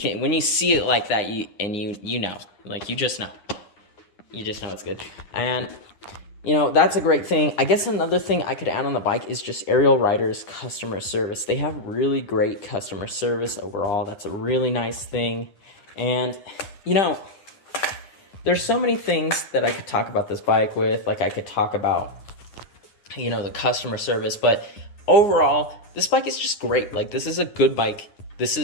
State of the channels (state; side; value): late; right; 9.8 ms